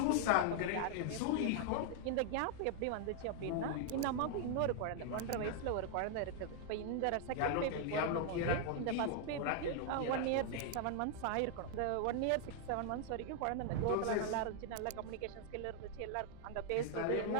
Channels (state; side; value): different; both; correlation 0.00